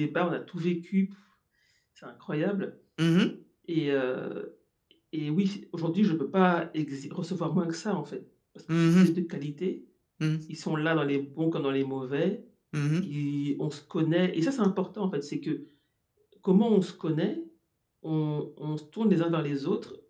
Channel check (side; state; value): both; identical; correlation 1.00